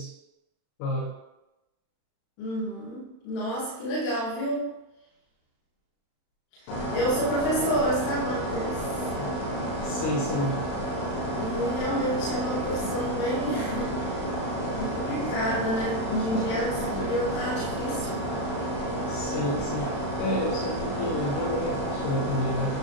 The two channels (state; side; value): late; right; 36 ms